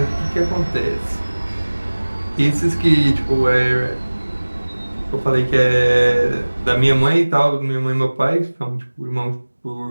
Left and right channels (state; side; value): inverted; both; correlation -1.00